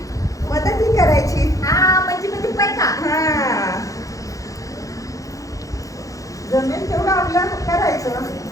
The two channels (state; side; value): late; right; 0.16 ms